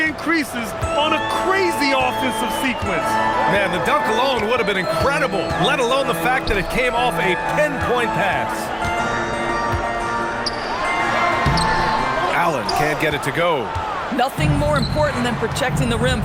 on a crazy offensive sequence. Man, the dunk alone would have been incredible, let alone the fact that it came off a pinpoint pass. Allen can't get it to go. Nothing more important than protecting the rim,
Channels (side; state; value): both; identical; correlation 1.00